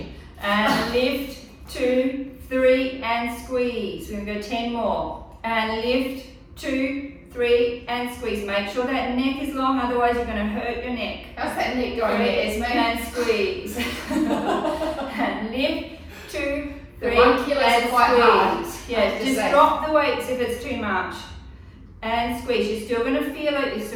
And lift, 2, 3, and squeeze. We're going to go 10 more. And lift, 2, 3, and squeeze. Make sure that neck is long, otherwise you're going to hurt your neck. How's that neck going there, Esme? And squeeze. And lift, 2, 3, the 1 kilo and is quite hard. Yeah, just drop the weights if it's too much. And squeeze. You're still going to feel it. You're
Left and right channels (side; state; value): both; identical; correlation 1.00